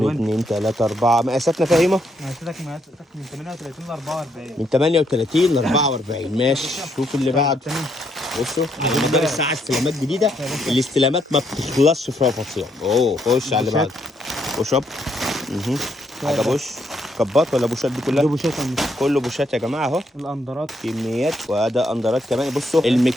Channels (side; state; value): both; normal; correlation 0.74